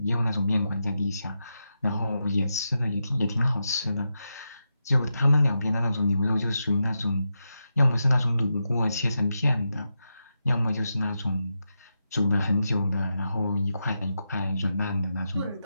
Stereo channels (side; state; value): both; inverted; correlation -0.87